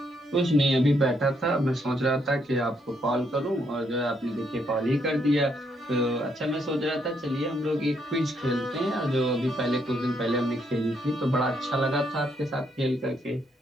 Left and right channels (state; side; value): normal; both; correlation 0.74